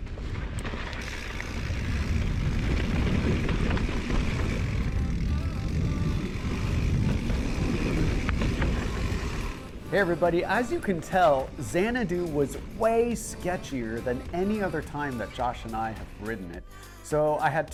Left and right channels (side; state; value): both; identical; correlation 1.00